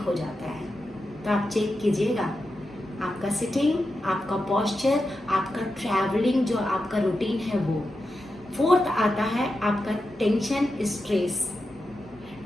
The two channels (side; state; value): both; normal; correlation 0.89